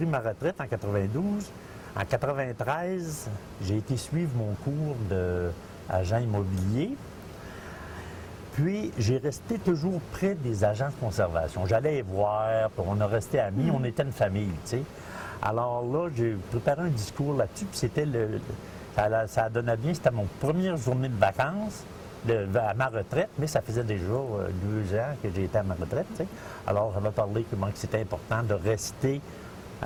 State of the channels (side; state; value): both; identical; correlation 1.00